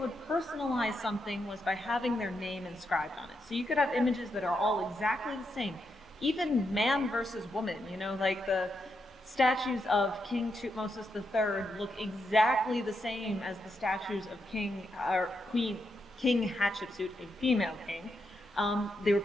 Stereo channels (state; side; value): normal; both; correlation 0.83